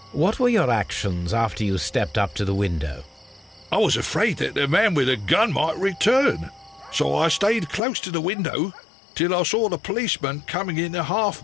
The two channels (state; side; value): drops out; right; at 7.8 s